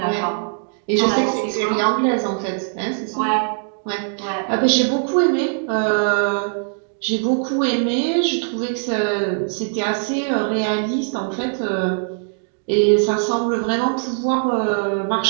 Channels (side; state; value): left; silent; digital silence